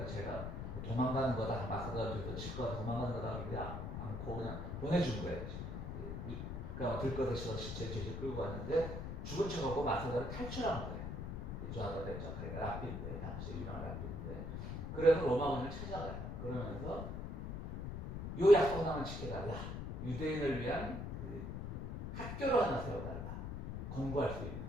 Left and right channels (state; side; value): noise; left; rumble, 5 dB below the sound